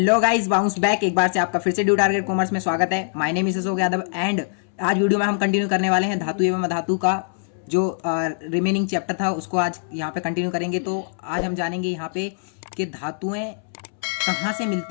guys, bounce back एक बार से आपका फिर से ड्यू टारगेट कॉमर्स में स्वागत है। My name is Ashok Yadav and आज वीडियो में हम कंटिन्यू करने वाले हैं धातु एवं अधातु का जो रिमेनिंग चैप्टर था उसको आज यहाँ पे कंटिन्यू करेंगे। तो आज हम जानेंगे यहाँ पे कि धातुएं कहाँ से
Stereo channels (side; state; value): right; silent; 64 dB below the other